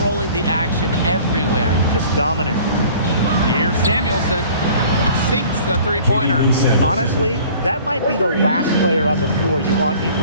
the action everywhere. Just dominant. Here's Samuelson. Sinks the three-pointer. Honestly, that might be the last player on the floor you want in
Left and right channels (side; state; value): both; inverted; correlation -0.49